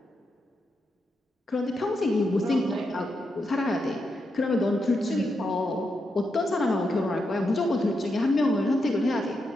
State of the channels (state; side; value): normal; both; correlation 0.84